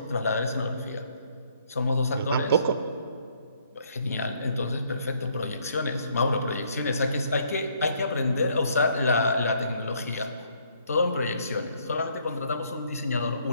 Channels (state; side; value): inverted; both; correlation -0.67